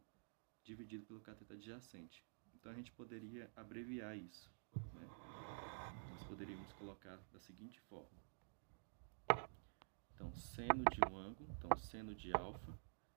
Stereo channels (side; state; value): left; silent; digital silence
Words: dividido pelo cateto adjacente. Então a gente poderia abreviar isso, né? Nós poderíamos colocar da seguinte forma. Então, seno de um ângulo, então seno de alfa